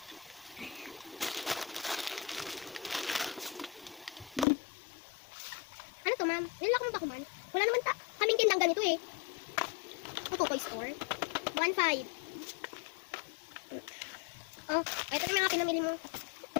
Ano to, ma'am? Nilala ko mo ba ko, man? Wala naman kaming tindang ganito, eh. Ito, toy store. 1.5. Oh, ito na mga pinamili mo.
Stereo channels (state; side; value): drops out; right; at 4.5 s